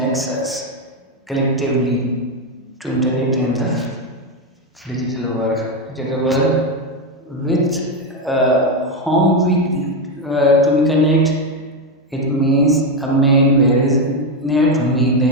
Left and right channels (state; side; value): normal; both; correlation 0.08